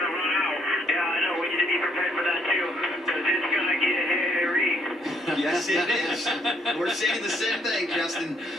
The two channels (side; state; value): both; normal; correlation 0.69